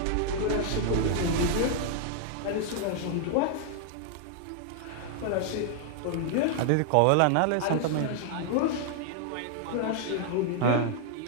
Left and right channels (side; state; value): both; different; correlation 0.00